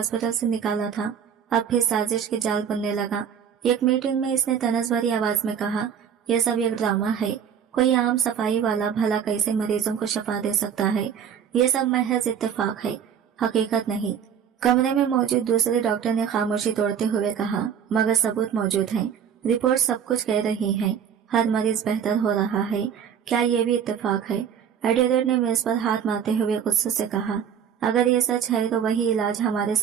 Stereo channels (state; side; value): quieter; left; 8.1 dB